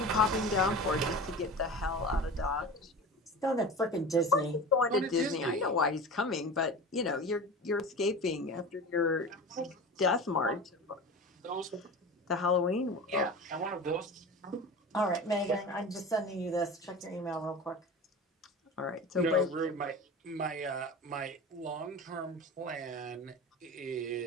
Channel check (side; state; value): both; normal; correlation 0.32